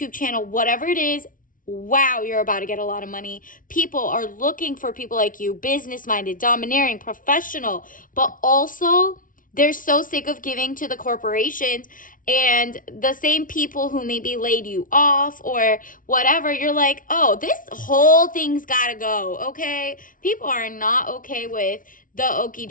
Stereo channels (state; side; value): late; right; 0.39 ms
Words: channel, whatever it is. Wow, you're about to get a lot of money. People are looking for people like you, business-minded, domineering, professional, but also they're so sick of giving to the corporations and the same people who maybe laid you off or whatever. You're like, oh, this whole thing's gotta go, okay? People are not okay with the okie